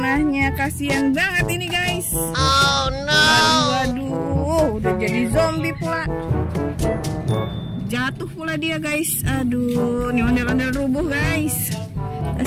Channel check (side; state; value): both; identical; correlation 1.00